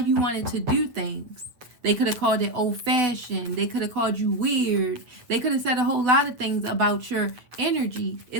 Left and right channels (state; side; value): late; left; 8.0 ms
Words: wanted to do things. They could have called it old-fashioned. They could have called you weird. They could have said a whole lot of things about your energy,